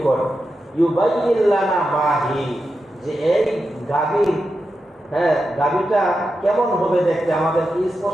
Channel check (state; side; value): normal; both; correlation 0.89